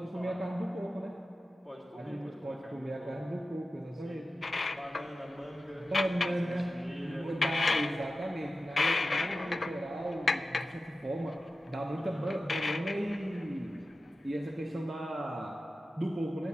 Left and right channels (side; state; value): both; normal; correlation 0.94